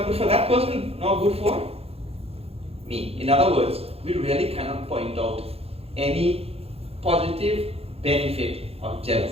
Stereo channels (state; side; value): late; left; 0.29 ms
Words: good for that person, not good for me. In other words, we really cannot point out any positive benefit of